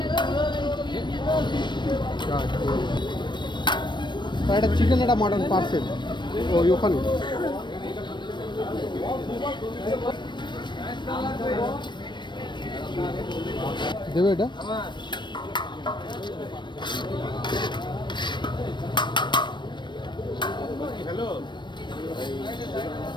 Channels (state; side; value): late; right; 0.22 ms